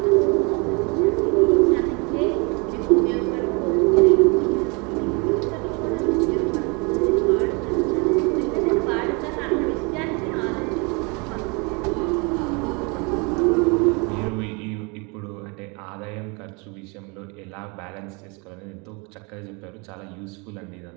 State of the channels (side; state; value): left; quieter; 30.8 dB